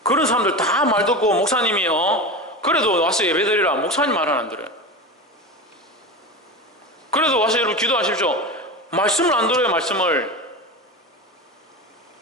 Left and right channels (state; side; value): normal; both; correlation 0.25